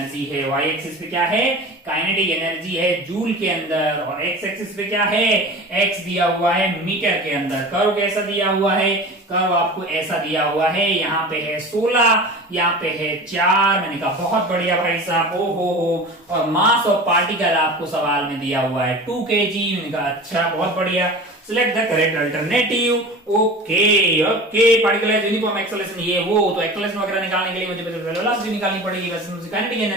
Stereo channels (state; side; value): normal; both; correlation 0.35